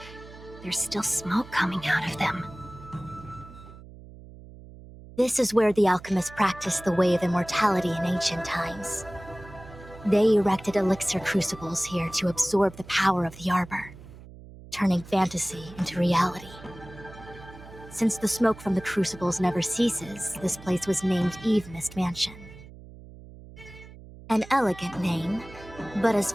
There's still smoke coming out of them. This is where the alchemists practiced the way of immortality in ancient times. They erected elixir crucibles here to absorb the power of the arbor, turning fantasy into reality. Since the smoke from the crucibles never ceases, this place was named Eve Mist Mansion. An elegant name, but as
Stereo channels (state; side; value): noise; right; hum, 18 dB below the sound